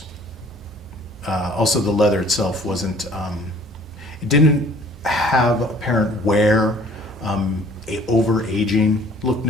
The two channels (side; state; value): both; normal; correlation 0.54